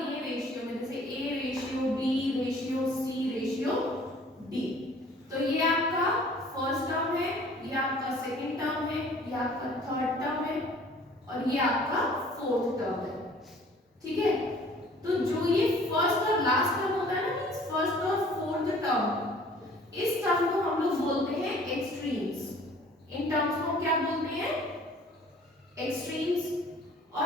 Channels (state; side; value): normal; both; correlation 0.52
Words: दिए रेशियो में, जैसे A ratio B ratio C ratio D, तो ये आपका फर्स्ट टर्म है, ये आपका सेकंड टर्म है, ये आपका थर्ड टर्म है और ये आपका फोर्थ टर्म है। ठीक है, तो जो ये फर्स्ट और लास्ट टर्म होता है ना, मींस फर्स्ट और फोर्थ टर्म, इस टर्म को हम लोग बोलते हैं एक्सट्रीम्स। इन टर्म्स को क्या बोलते हैं? एक्सट्रीम्स।